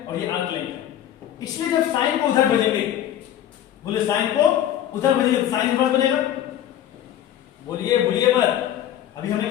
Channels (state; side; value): quieter; right; 11.3 dB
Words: और ये आर्क लेंथ है। इसलिए जब साइन को उधर भेजेंगे, बोले साइन को उधर भेजेंगे तो साइन इनवर्स बनेगा। बोलिए बोलिए मत। अभी हमने